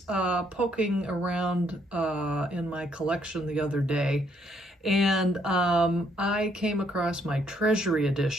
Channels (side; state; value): both; normal; correlation 0.70